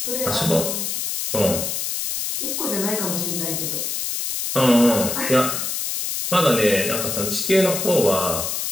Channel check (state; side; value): noise; left; hiss, 2 dB below the sound